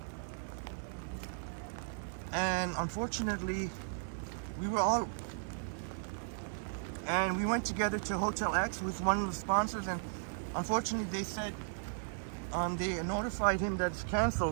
and unfortunately we went together to Hotel X with one of the sponsors, and unfortunately they said they notified him that it's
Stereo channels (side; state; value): left; silent; digital silence